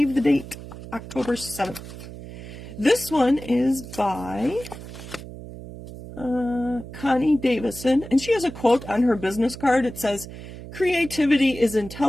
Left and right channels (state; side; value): noise; right; hum, 13 dB below the sound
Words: the date. October 7th. This one is by Connie Davison, and she has a quote on her business card. It says, "Creativity is